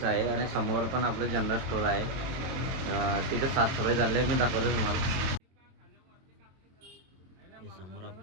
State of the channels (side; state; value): left; late; 22 ms